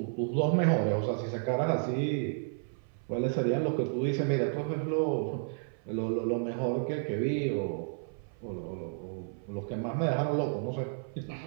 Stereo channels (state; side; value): silent; left; 56 dB below the other